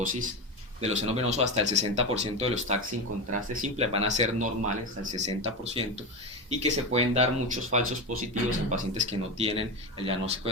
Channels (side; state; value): both; normal; correlation 0.19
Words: de los senos venosos, hasta el 60% de los TACs sin contraste simple van a ser normales, hasta el 60%, y que se pueden dar muchos falsos positivos en pacientes que no tienen el diagnóstico